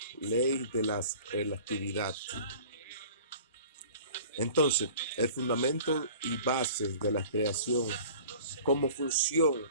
ley de la relatividad. Entonces, el fundamento y base de la creación, como función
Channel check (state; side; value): inverted; both; correlation -0.44